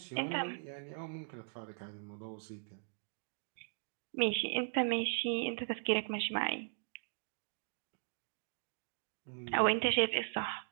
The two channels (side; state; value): left; silent; digital silence